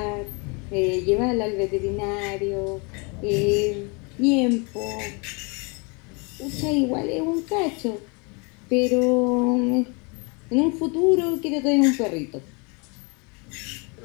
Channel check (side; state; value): right; quieter; 31.4 dB